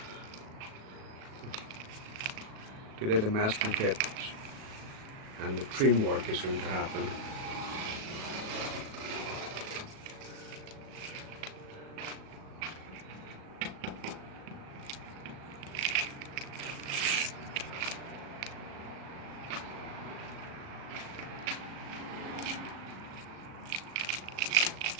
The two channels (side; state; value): left; late; 37 ms